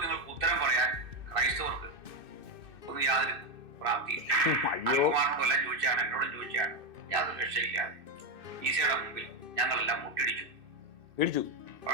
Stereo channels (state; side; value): late; left; 2.6 ms